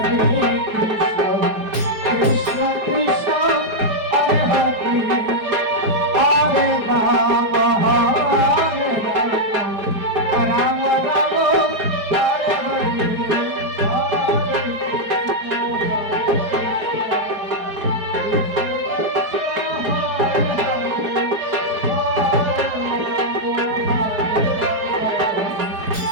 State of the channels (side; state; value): left; late; 4.8 ms